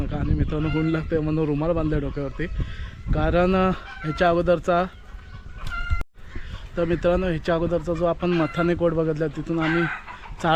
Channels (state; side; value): identical; both; correlation 1.00